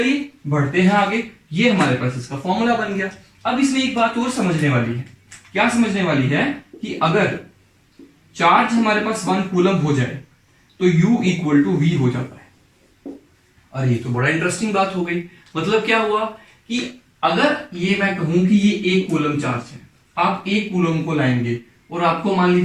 बढ़ते हैं आगे। ये हमारे पास इसका फॉर्मूला बन गया। अब इसमें एक बात और समझने वाली है। क्या समझने वाली है? कि अगर चार्ज हमारे पास 1 कूलम हो जाए तो U इक्वल टू V हो जाता है। अरे ये तो बड़ा इंटरेस्टिंग बात हो गई। मतलब क्या हुआ कि अगर ये मैं कहूं कि ये 1 कूलम चार्ज है, आप 1 कूलम को लाएंगे और आपको मान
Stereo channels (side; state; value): both; identical; correlation 1.00